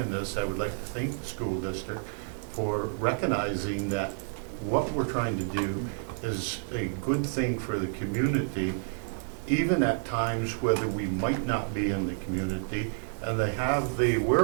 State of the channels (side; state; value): left; silent; 58 dB below the other